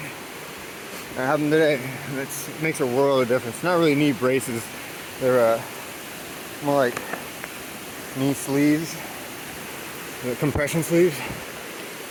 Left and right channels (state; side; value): identical; both; correlation 1.00